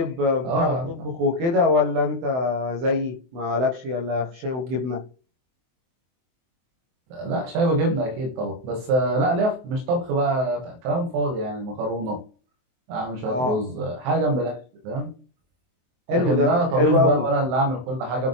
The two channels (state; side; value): late; left; 23 ms